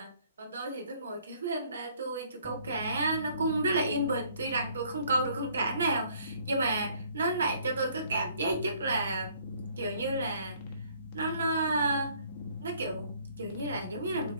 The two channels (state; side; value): inverted; both; correlation -0.61